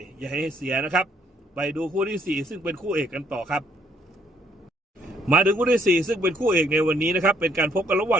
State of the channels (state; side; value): normal; both; correlation 0.68